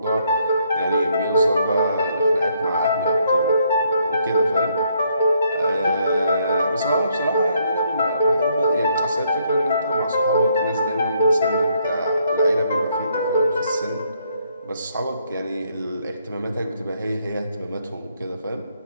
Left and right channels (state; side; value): inverted; both; correlation -0.71